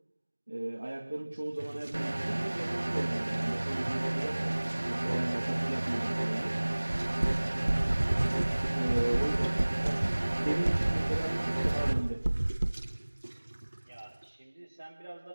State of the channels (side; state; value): both; inverted; correlation -1.00